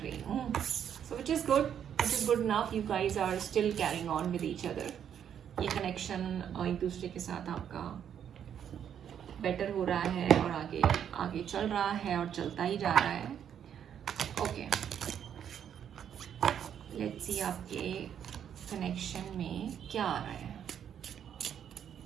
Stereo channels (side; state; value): left; quieter; 8.9 dB